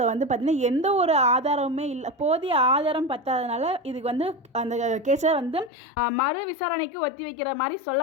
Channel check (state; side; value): drops out; right; at 5.7 s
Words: வந்து பார்த்திங்கன்னா எந்த ஒரு ஆதாரமுமே இல்லை, போதிய ஆதாரம் பத்தாதனால இதுக்கு வந்து அந்த கேஸை வந்து மறு விசாரணைக்கு ஒத்தி வைக்கிற மாதிரி